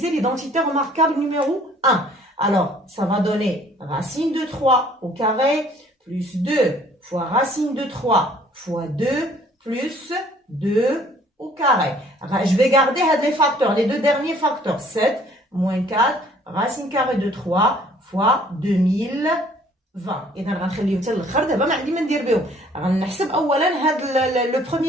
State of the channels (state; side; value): normal; both; correlation 0.58